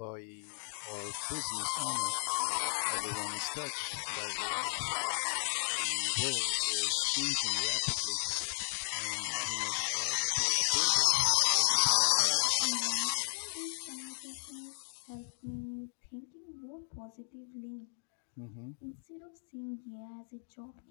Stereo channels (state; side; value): silent; right; digital silence